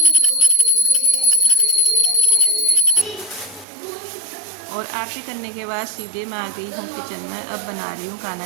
और आरती करने के बाद सीधे मैं आ गई हूँ किचन में। अब बना रही हूँ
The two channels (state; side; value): drops out; left; at 3.7 s